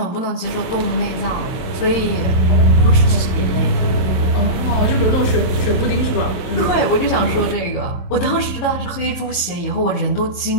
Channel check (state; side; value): late; right; 22 ms